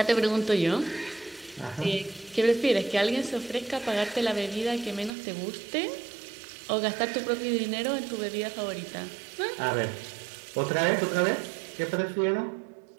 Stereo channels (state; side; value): drops out; left; at 5.1 s